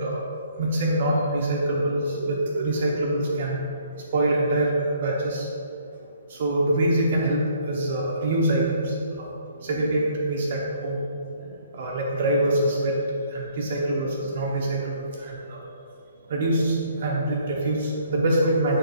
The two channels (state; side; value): inverted; both; correlation -0.62